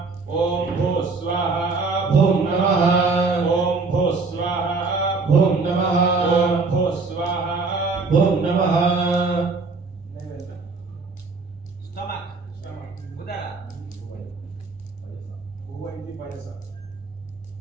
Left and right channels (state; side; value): quieter; left; 4.1 dB